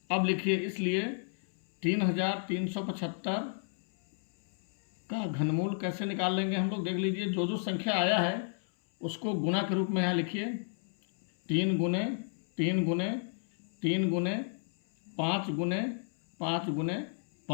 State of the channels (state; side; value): silent; right; 56 dB below the other